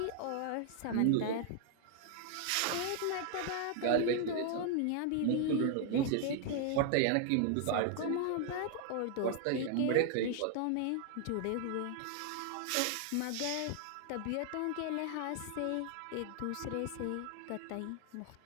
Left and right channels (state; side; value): different; both; correlation 0.00